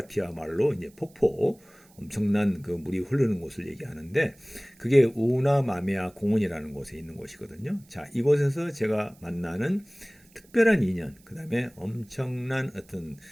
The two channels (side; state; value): right; noise; hiss, 29 dB below the sound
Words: 말로 이제 폭포, 엄청난 그 물이 흐르는 곳을 얘기하는데 그게 우나마메아 공원이라는 곳에 있는 곳이거든요. 자, 이곳에서 제가 만나는 특별한 인연, 그 다음에 엄청난 어떤